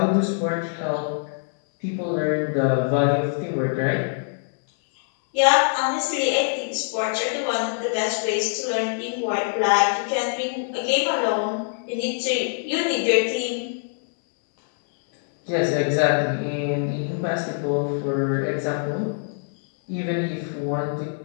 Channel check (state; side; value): silent; right; digital silence